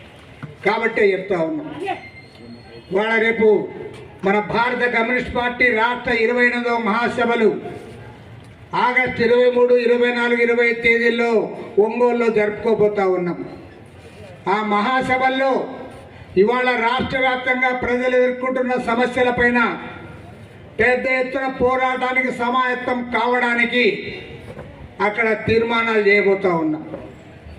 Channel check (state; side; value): identical; both; correlation 1.00